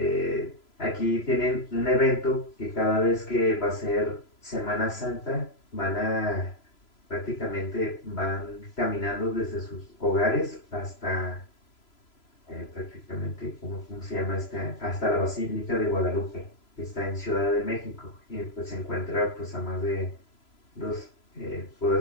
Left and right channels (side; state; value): right; late; 3.0 ms